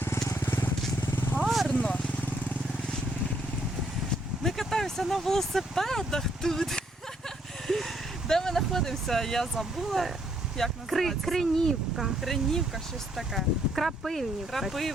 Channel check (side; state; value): both; normal; correlation 0.70